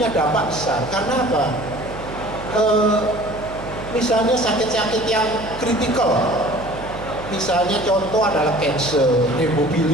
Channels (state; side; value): noise; right; hum, 12 dB below the sound